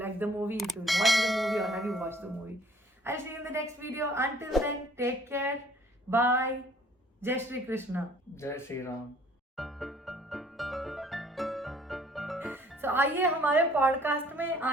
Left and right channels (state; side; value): normal; both; correlation 0.57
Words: the movie, if you watched the movie or have you watched the movie. I'll see you in the next video. Until then, take care. Bye. Jai Shri Krishna. Jai Shri Ram. So आइए हमारे podcast में